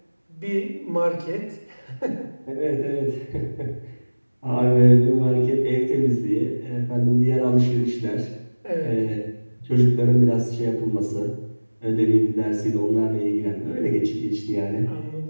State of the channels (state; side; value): inverted; both; correlation -1.00